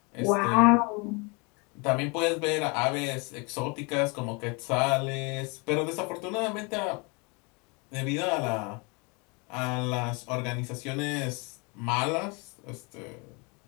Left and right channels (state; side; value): quieter; right; 30.5 dB